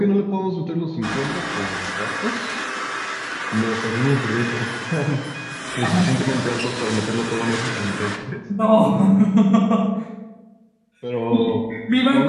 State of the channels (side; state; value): both; identical; correlation 1.00